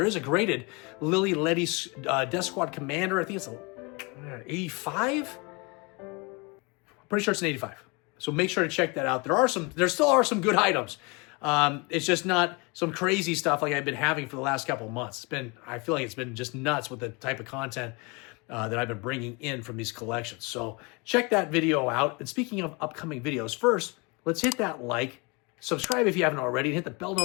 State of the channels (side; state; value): right; quieter; 28.7 dB